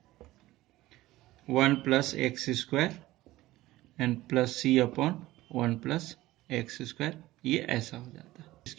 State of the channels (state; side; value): quieter; left; 17.1 dB